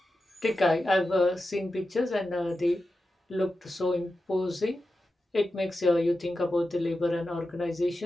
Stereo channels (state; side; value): normal; both; correlation 0.91